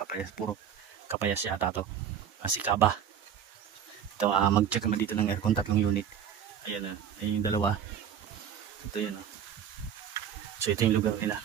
puro Capayas yata to. Sikaba. Ito, mag-check kami dito ng aircon, 3 unit. Ayan, ayun yung dalawa. Ito yun, So ito yung lugar nila.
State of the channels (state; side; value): quieter; left; 8.6 dB